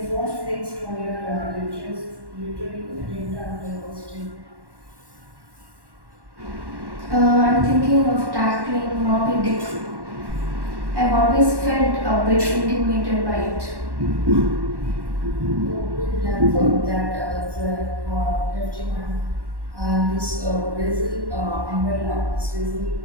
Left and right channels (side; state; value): left; late; 1.1 ms